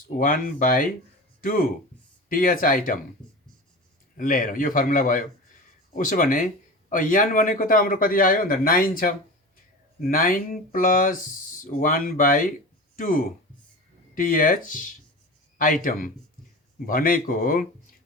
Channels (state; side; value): normal; both; correlation 0.31